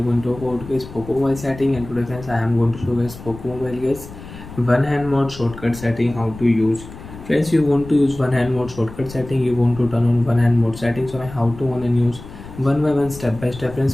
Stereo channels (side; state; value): left; noise; rumble, 15 dB below the sound